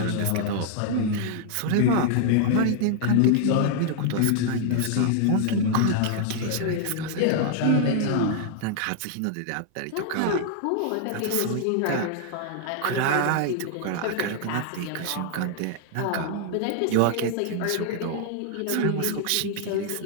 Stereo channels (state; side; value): different; both; correlation 0.00